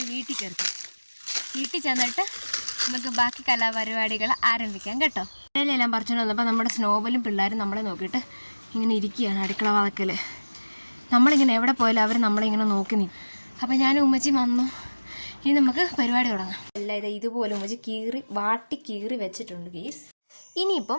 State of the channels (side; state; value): both; inverted; correlation -1.00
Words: വീട്ടിൽ കയറിക്കാം. വീട്ടിൽ ചെന്നിട്ട് നമുക്ക് ബാക്കി കലാപരിപാടികൾ ആരംഭിക്കാം കേട്ടോ. ഇലയെല്ലാം പറിച്ചുകൊണ്ട് വന്നപ്പോൾ നമ്മുടെ സ്നോബലും പിള്ളേരും നമ്മളെ നോക്കിയിട്ട് ഇങ്ങനെ ഇരിക്കുകയാണ് അടുക്കള വാതിക്കൽ. നമ്മളിങ്ങനെ എവിടെ പോയാലും അവർ നമ്മളിങ്ങനെ നോക്കി നിൽക്കും. അപ്പോൾ ഞാനും ഉമ്മച്ചി വന്നു. ഇനി നമുക്ക് പരിപാടി തുടങ്ങാം. എല്ലാം ഇതുപോലെ ഉമ്മച്ചി വാട്ടി കീറി വെച്ചിട്ടുണ്ട് ഗീസ്.